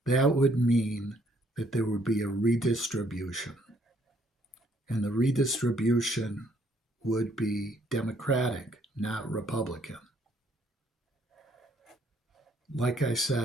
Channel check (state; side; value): normal; both; correlation 0.67